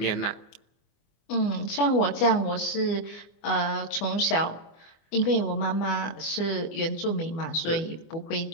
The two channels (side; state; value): right; late; 24 ms